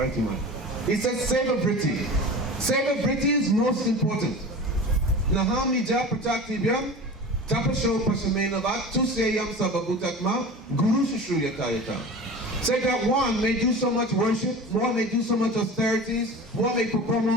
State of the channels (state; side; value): normal; both; correlation 0.35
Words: He said Seva Vritti. Seva Vritti is most important. Naham Nija Prachaktibhyam Tapasho Pasamenavat Tuseyam Sababutatma Guru Shushruyatayata. Say that one may do so much worship, one may do so much austerities, one may perform